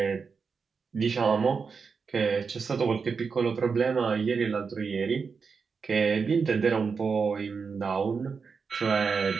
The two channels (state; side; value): quieter; left; 5.4 dB